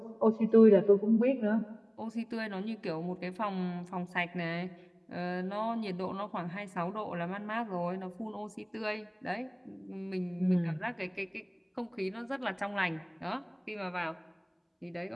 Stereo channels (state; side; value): identical; both; correlation 1.00